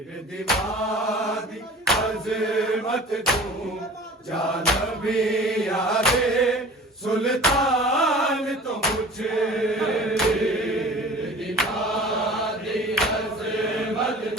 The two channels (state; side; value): normal; both; correlation 0.43